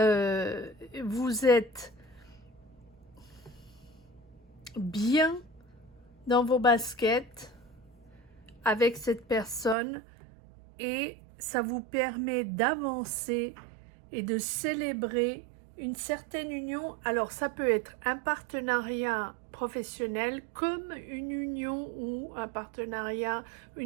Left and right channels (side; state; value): left; drops out; at 9.8 s